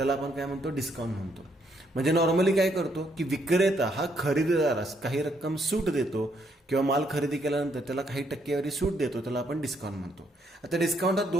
आपण काय म्हणतो, डिस्काउंट म्हणतो. म्हणजे नॉर्मली काय करतो की विक्रेता हा खरेदीदारास काही रक्कम सूट देतो किंवा माल खरेदी केल्यानंतर त्याला काही टक्केवारी सूट देतो, त्याला आपण डिस्काउंट म्हणतो. आता डिस्काउंट हा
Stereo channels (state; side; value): normal; both; correlation 0.72